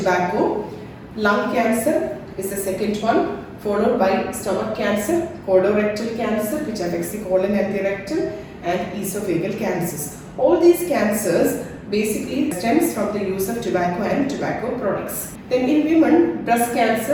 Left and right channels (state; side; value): identical; both; correlation 1.00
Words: Lung cancer is the second one, followed by stomach cancer, colorectal cancer, which affects the colon and the rectum, and esophageal cancers. All these cancers basically stems from the use of tobacco and tobacco products. Then in women, breast